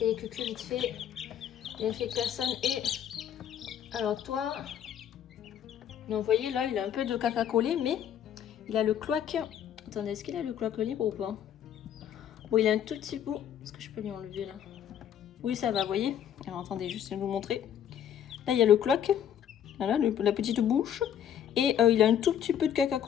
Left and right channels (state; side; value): quieter; right; 9.5 dB